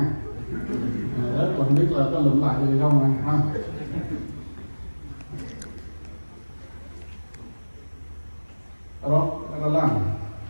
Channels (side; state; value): both; inverted; correlation -1.00